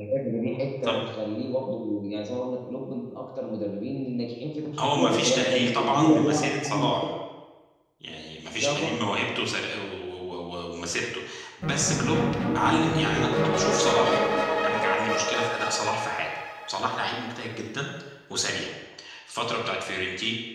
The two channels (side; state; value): both; identical; correlation 1.00